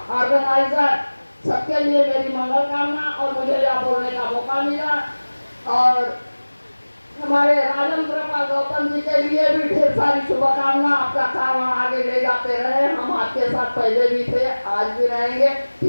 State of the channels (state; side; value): inverted; both; correlation -1.00